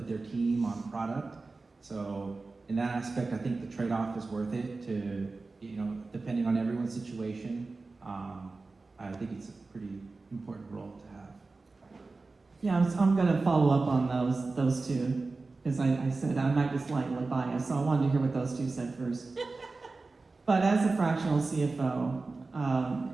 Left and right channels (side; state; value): left; quieter; 3.7 dB